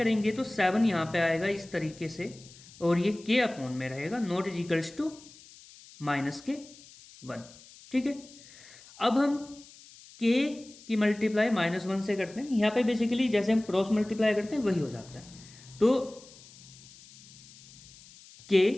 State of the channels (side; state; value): left; noise; hiss, 21 dB below the sound